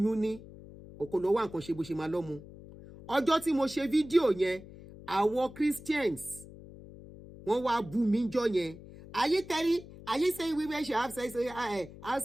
ní ọkọ lọ wá nǹkan ṣe bó ṣe máa lọ́mú ọjọ́ tí mo ṣe fídíò yẹn àwọn Christians wọ́n wá bú mi jọ yẹn are you saying women should have sex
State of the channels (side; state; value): left; noise; hum, 17 dB below the sound